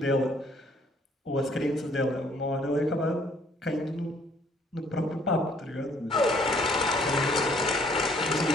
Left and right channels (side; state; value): both; normal; correlation 0.62